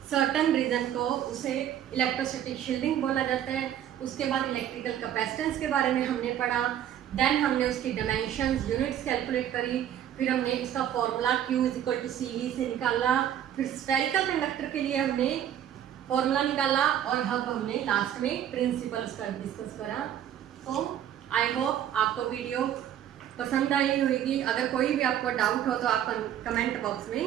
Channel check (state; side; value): quieter; left; 10.6 dB